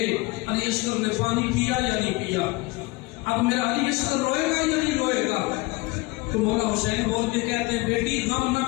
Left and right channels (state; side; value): quieter; right; 23.5 dB